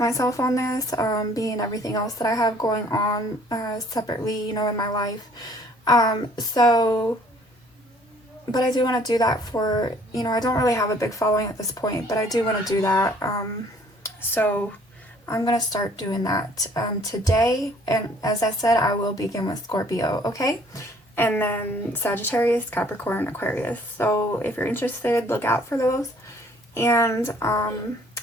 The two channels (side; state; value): both; normal; correlation 0.58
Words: myself on this, being everything else that I have going on separately, you know, in my life. But I do want to do that for, you know, I don't really have a big following at this point, but I do want to do that. So I'm going to start doing that today. And as I said, I will begin with Scorpio, okay? And then Sagittarius, Capricorn, Aquarius. So if you're interested, look out for those. And I'll